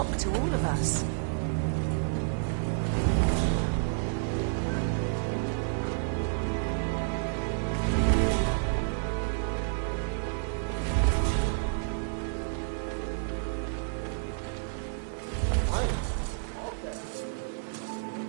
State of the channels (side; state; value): left; silent; digital silence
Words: to all of us. Fine. All set up. Give us